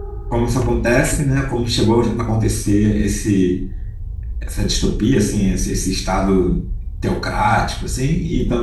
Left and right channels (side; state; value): both; identical; correlation 1.00